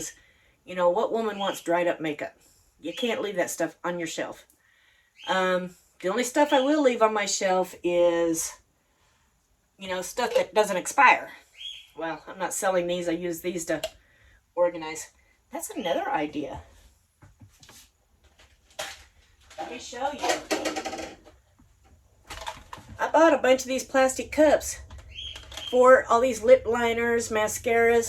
what woman wants dried up makeup? You can't leave that stuff on your shelf. The only stuff I will leave on my shelf is, stuff that doesn't expire. Well, I'm not selling these. I use these to organize. That's another idea. Let me show you. I bought a bunch of these plastic cups for all these lip liners,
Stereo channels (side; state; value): both; identical; correlation 1.00